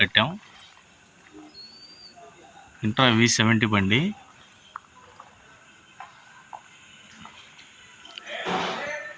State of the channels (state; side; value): identical; both; correlation 1.00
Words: ఇంట్రా V70 బండి.